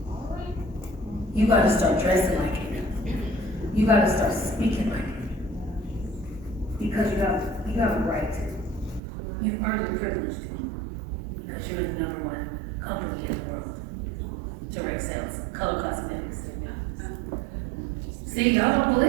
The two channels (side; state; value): left; drops out; at 9.0 s